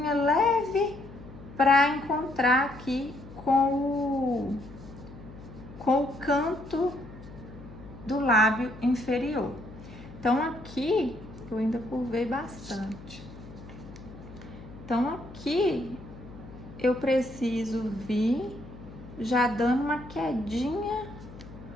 leve para encontrar aqui com o canto do lábio inferior. Então aqui eu ainda curvei bastante. Então aqui eu preciso vir já dando uma quedinha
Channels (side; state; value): left; noise; hum, 16 dB below the sound